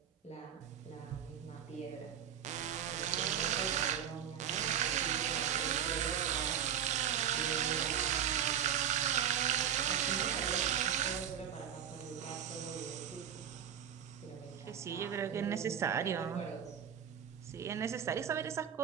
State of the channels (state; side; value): quieter; left; 9.2 dB